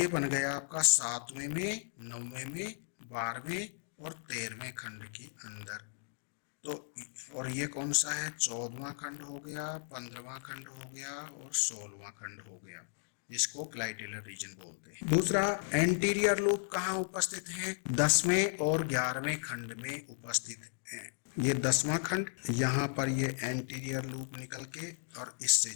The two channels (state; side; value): silent; right; digital silence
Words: बन गया आपका 7वें में, 9वें में, 12वें और 13वें खंड के अंदर तो और ये कौन सा है, 14वां खंड हो गया, 15वां खंड हो गया और 16वां खंड हो गया, जिसको क्लाइटेलर रीजन बोलते हैं। दूसरा, एंटीरियर लूप कहाँ उपस्थित है, 10वें और 11वें खंड में उपस्थित है। ये 10वां खंड, यहाँ पर ये एंटीरियर लूप निकल के और इससे